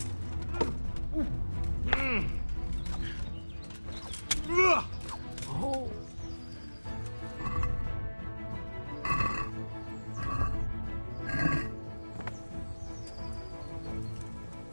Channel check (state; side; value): inverted; both; correlation -1.00